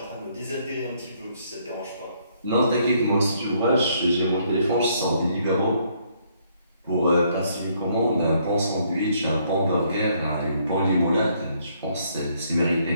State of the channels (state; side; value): inverted; both; correlation -0.69